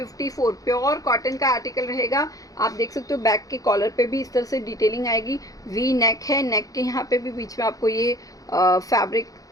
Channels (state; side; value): late; right; 0.17 ms